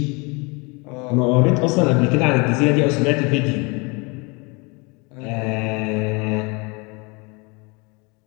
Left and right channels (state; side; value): quieter; right; 29.2 dB